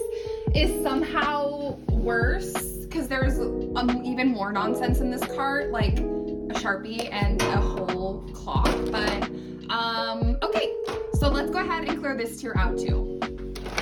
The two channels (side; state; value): both; identical; correlation 1.00